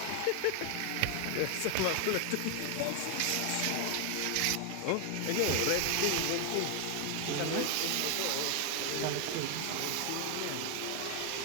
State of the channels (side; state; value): both; different; correlation 0.00